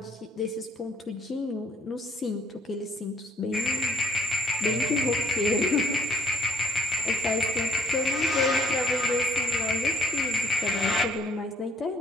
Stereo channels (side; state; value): both; normal; correlation 0.61